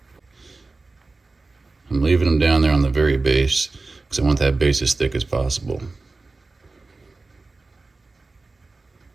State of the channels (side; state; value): left; quieter; 3.6 dB